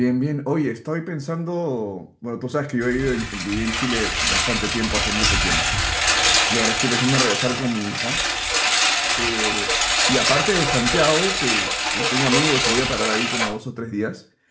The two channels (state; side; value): identical; both; correlation 1.00